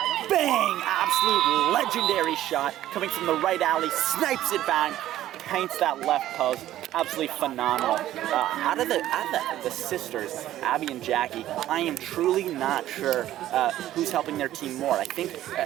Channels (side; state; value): left; quieter; 13.4 dB